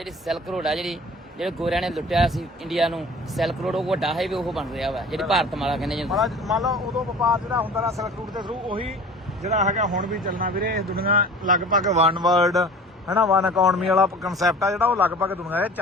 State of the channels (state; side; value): normal; both; correlation 0.43